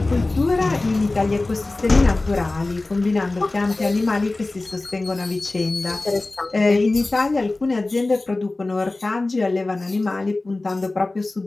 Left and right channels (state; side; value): quieter; right; 3.1 dB